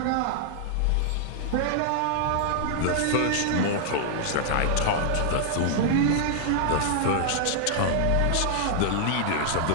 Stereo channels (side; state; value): both; different; correlation -0.01